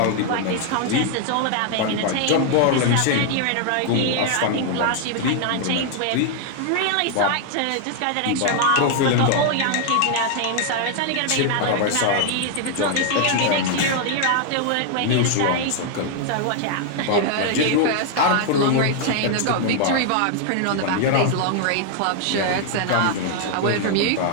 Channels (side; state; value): both; different; correlation 0.00